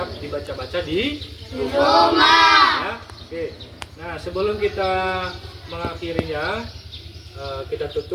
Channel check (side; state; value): both; identical; correlation 1.00